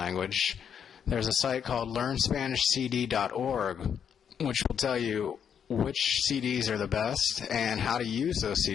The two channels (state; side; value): quieter; right; 7.9 dB